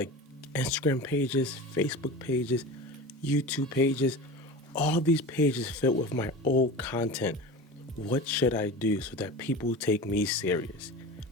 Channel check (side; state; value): both; normal; correlation 0.31